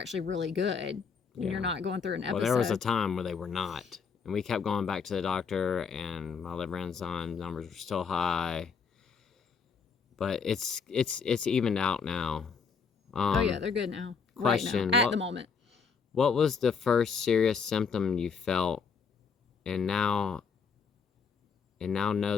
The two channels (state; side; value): quieter; right; 5.8 dB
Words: really good. And you're not going through an episode. Well, there was a time where they were not. And we kept going back to the doctor, and my liver enzyme numbers were still high. But it's evened out now. Oh, yeah, they're good now. Question. Right now, at the moment. What was the first serious symptom you felt and now